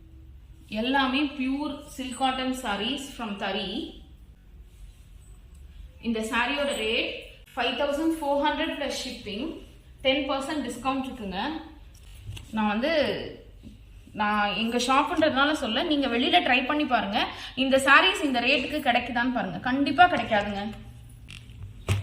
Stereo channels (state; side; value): identical; both; correlation 1.00